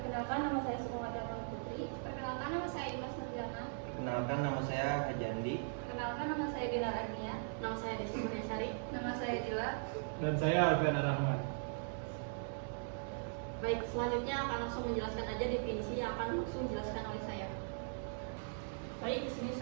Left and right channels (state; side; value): silent; left; digital silence